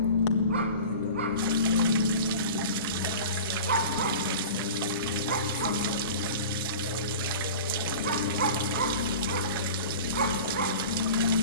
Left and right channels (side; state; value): both; inverted; correlation -0.37